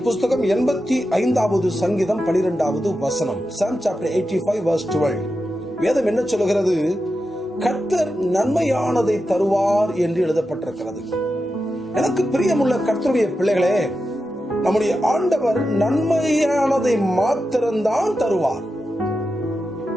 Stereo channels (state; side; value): normal; both; correlation 0.90